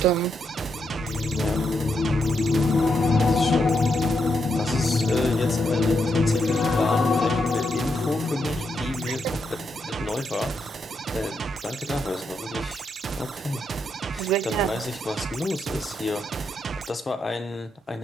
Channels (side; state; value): both; normal; correlation 0.81